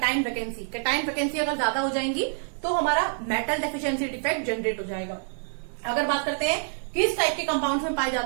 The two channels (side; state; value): left; silent; 60 dB below the other